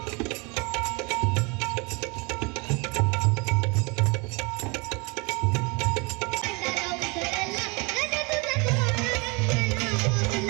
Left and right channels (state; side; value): quieter; left; 29.0 dB